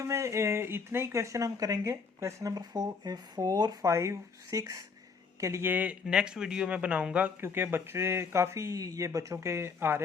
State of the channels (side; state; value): right; quieter; 5.2 dB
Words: में इतने ही क्वेश्चन हम करेंगे। क्वेश्चन नंबर 4 5 6 के लिए नेक्स्ट वीडियो में बनाऊंगा, क्योंकि बच्चे काफ़ी, ये बच्चों के आ